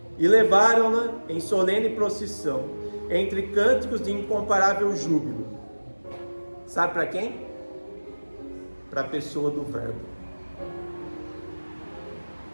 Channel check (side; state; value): both; inverted; correlation -1.00